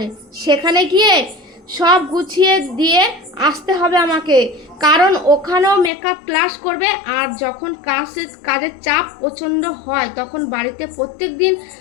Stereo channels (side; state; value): right; drops out; at 5.9 s